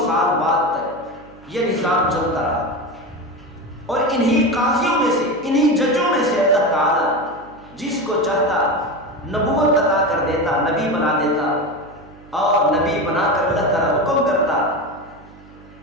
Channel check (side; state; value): right; noise; hum, 25 dB below the sound